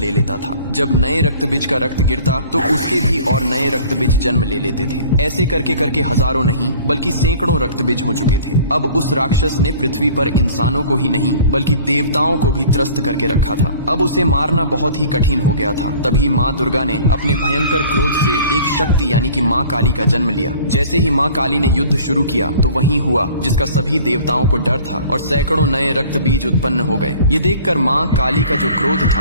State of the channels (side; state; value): both; inverted; correlation -0.48